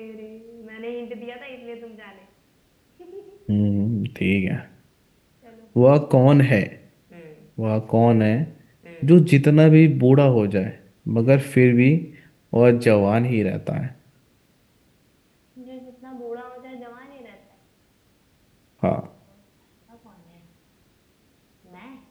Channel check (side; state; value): both; identical; correlation 1.00